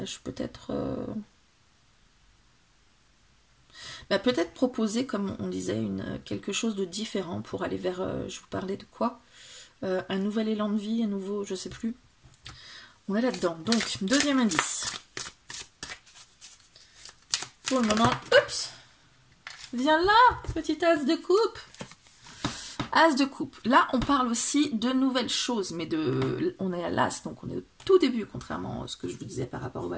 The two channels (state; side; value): identical; both; correlation 1.00